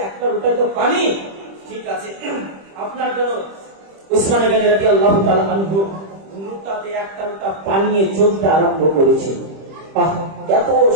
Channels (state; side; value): late; left; 25 ms